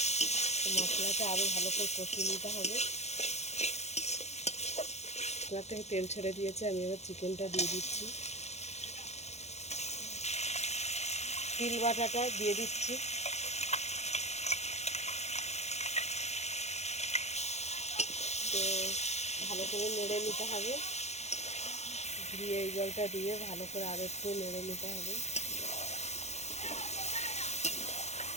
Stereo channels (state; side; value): late; right; 0.32 ms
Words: মশলাটা আরও ভালো করে কষিয়ে নিতে হবে। মশলা থেকে তেল ছেড়ে দিয়েছে, আমি এবার চিকেনটা দিয়ে দিচ্ছি। তিল বাটাটা দিয়ে দিচ্ছি, তো ভালো করে নেড়ে নিতে হবে। দিয়ে এই জলটা দিয়ে ভালো করে আরও একটু নেড়ে নিতে হবে।